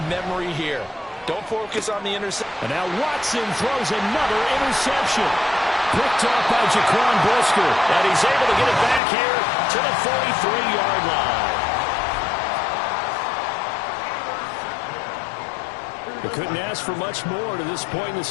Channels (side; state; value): right; drops out; at 9.0 s